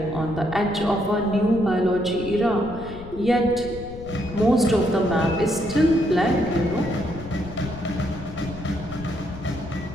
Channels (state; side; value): noise; left; rumble, 13 dB below the sound